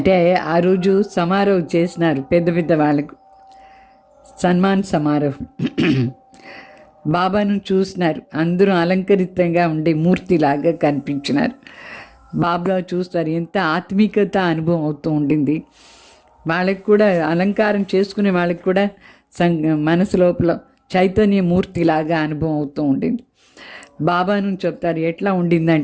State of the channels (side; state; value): both; identical; correlation 1.00